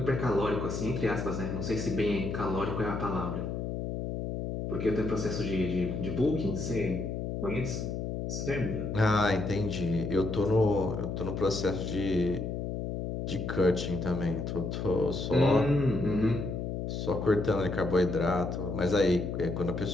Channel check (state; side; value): noise; left; hum, 3 dB below the sound